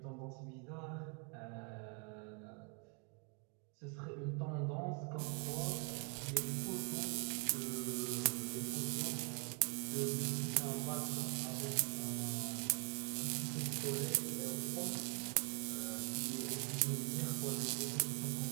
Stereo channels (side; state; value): left; quieter; 38.8 dB